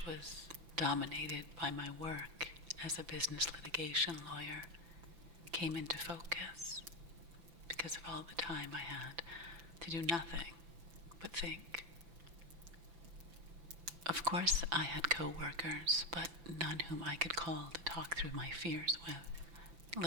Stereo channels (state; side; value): late; left; 5.9 ms